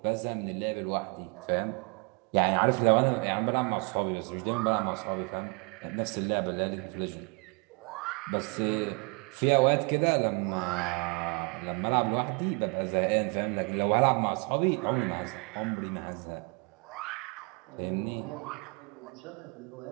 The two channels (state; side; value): quieter; left; 33.1 dB